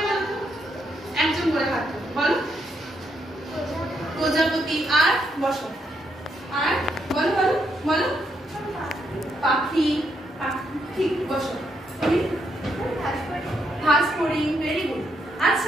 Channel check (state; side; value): normal; both; correlation 0.77